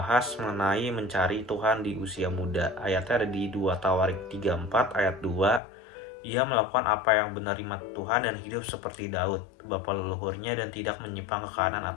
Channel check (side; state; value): right; drops out; at 5.6 s